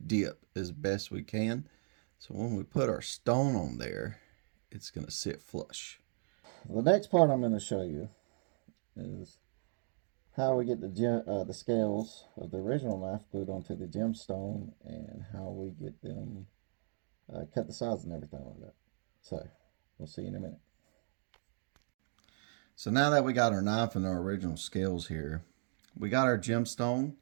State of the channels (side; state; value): left; silent; digital silence